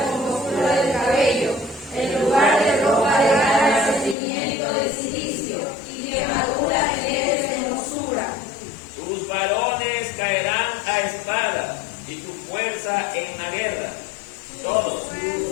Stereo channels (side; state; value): right; drops out; at 4.2 s